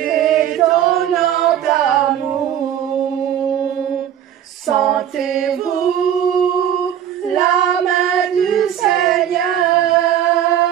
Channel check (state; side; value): quieter; left; 10.3 dB